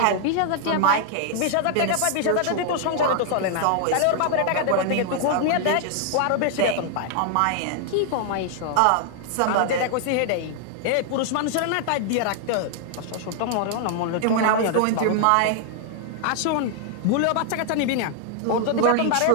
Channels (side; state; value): both; different; correlation 0.00